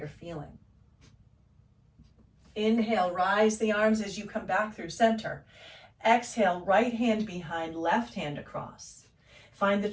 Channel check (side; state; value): both; identical; correlation 1.00